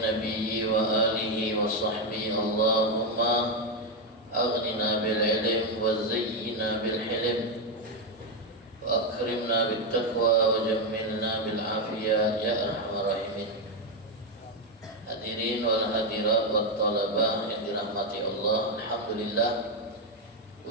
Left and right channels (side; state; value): both; normal; correlation 0.05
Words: nabiyyi wa alihi wa sahbihi. Allahumma aghnina bil ilm wa zayyina bil hilm wa akrimna bit taqwa wa jammilna bil afiyah ya arhamar rahimin. Hadirin wal hadirat wat talabah yang dirahmati Allah, alhamdulillah,